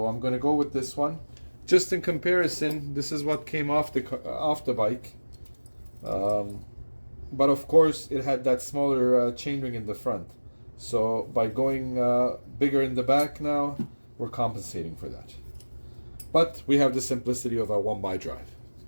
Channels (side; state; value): both; inverted; correlation -1.00